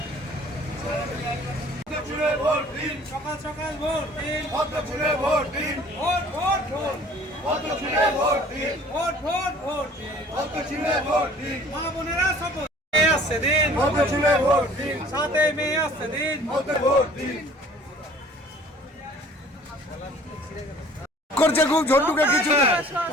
সকাল সকাল ভোট দিন, ভোট দিন, ভোট ভোট ভোট, ভোট দিন, ভোট ভোট ভোট দিন, ভোট দিন, মা বোনেরা শপথ মেয়ে আসছে দিন, ভোট দিন, 7 মে আসছে দিন, ভোট দিন। করছে খুব ঝন্টুকে কিছু না।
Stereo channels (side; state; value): both; normal; correlation 0.51